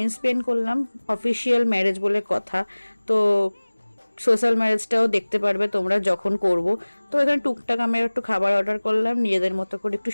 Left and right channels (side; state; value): both; inverted; correlation -1.00